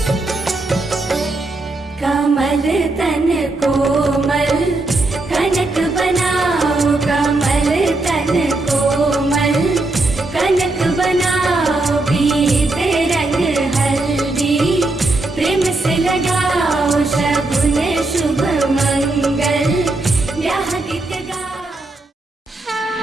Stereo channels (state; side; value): quieter; left; 3.0 dB